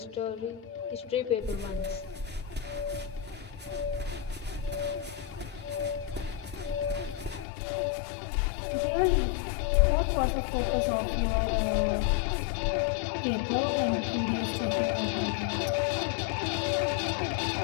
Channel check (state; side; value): drops out; right; at 7.5 s